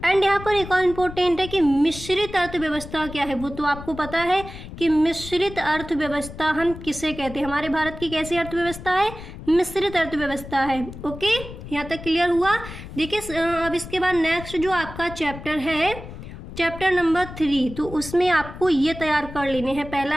एंड यहाँ पर एक और इम्पोर्टेंट है कि मिश्रित अर्थव्यवस्था क्या है। वो तो आपको पता है कि मिश्रित अर्थव्यवस्था हम किसे कहते हैं। हमारे भारत की कैसी अर्थव्यवस्था है, मिश्रित अर्थव्यवस्था है, ओके। यहाँ तक क्लियर हुआ। देखिए अब इसके बाद नेक्स्ट जो आपका चैप्टर है चैप्टर नंबर 3, तो उसमें आपको ये तैयार कर लेने हैं। पहला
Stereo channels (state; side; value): noise; left; rumble, 12 dB below the sound